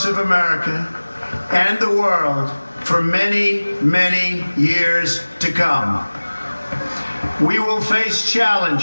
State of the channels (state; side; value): inverted; both; correlation -1.00